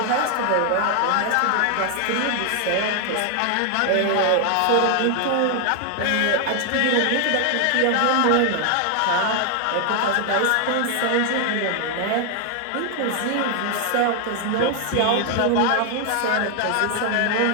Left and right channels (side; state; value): both; different; correlation 0.00